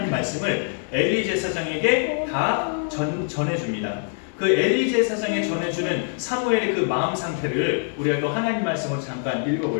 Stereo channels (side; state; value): right; silent; digital silence